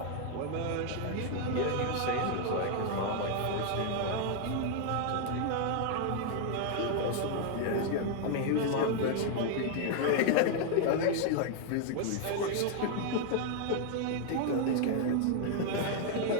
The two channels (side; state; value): both; different; correlation 0.00